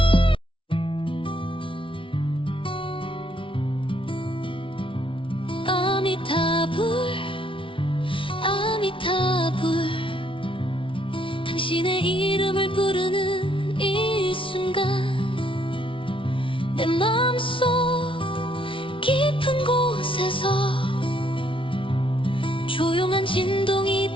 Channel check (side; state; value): right; late; 0.25 ms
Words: 아미타불 아미타불 당신의 이름을 부르는 이 순간 내 마음속 깊은 곳에서 조용한 진동이